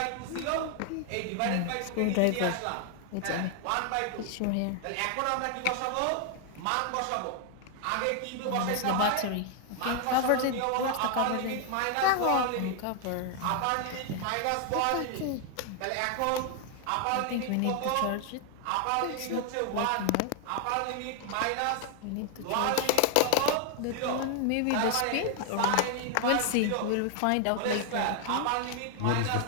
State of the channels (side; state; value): both; different; correlation 0.00